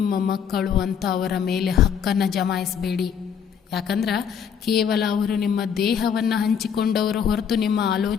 ಮಕ್ಕಳು ಅಂತ ಅವರ ಮೇಲೆ ಹಕ್ಕನ್ನು ಜಮಾಯಿಸಬೇಡಿ. ಯಾಕಂದ್ರೆ ಕೇವಲ ಅವರು ನಿಮ್ಮ ದೇಹವನ್ನು ಹಂಚಿಕೊಂಡವರು ಹೊರತು ನಿಮ್ಮ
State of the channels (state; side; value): quieter; right; 7.6 dB